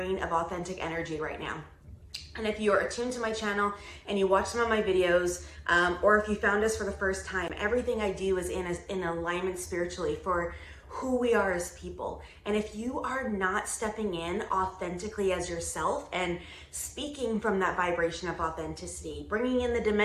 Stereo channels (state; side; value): identical; both; correlation 1.00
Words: of authentic energy right now. And if you are attuned to my channel and you watch some of my videos, or if you found us for the first time, everything I do is in alignment spiritually for who we are as people. And if you are not stepping in authentically as yourself and speaking from that vibration of authenticity, bringing in the